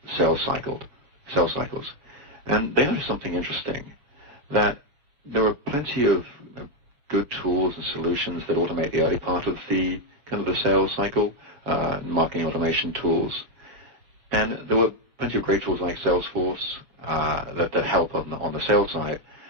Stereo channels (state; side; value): late; left; 7.0 ms